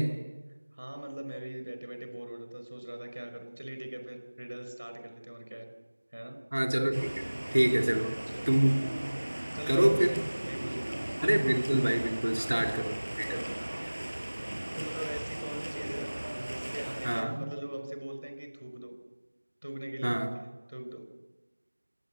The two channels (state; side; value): inverted; both; correlation -1.00